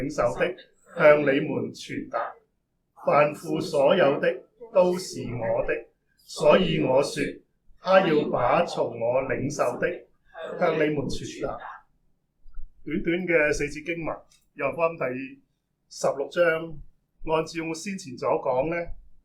受的向你們傳達。凡父所有的都是我的，所以我說，他要把從我領受的向你們傳達。短短嘅4節經文，約翰福音第16章，按照我先前所講呢，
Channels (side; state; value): both; identical; correlation 1.00